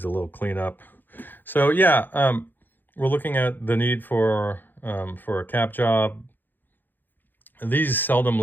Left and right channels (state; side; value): late; right; 0.090 ms